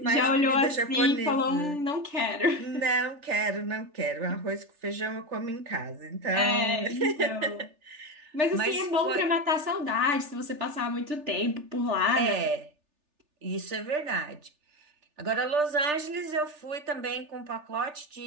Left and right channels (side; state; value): left; late; 3.4 ms